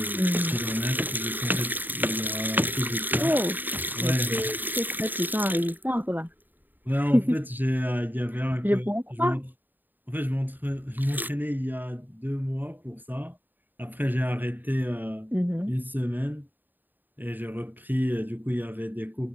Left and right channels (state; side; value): late; left; 0.090 ms